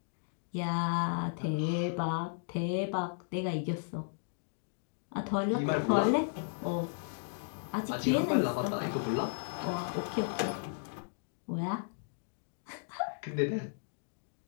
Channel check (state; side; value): silent; right; digital silence